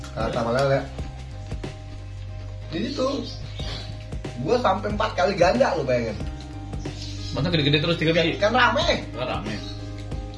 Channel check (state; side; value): identical; both; correlation 1.00